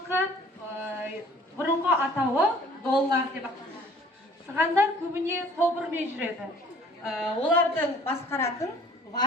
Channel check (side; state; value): both; normal; correlation 0.53